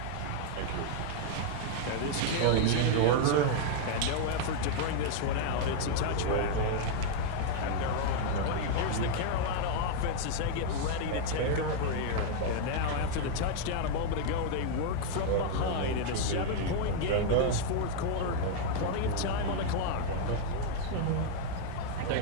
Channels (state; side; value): different; both; correlation 0.00